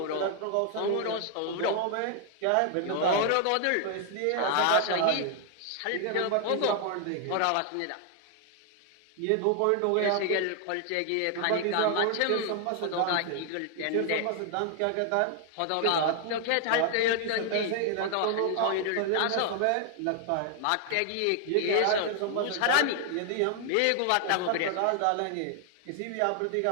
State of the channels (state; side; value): different; both; correlation 0.00